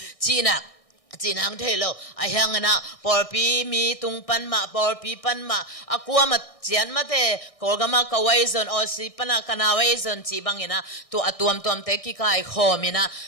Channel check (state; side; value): late; right; 1.6 ms